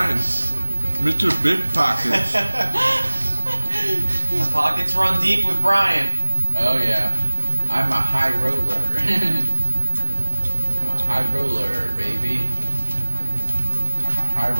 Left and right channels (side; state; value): both; inverted; correlation -1.00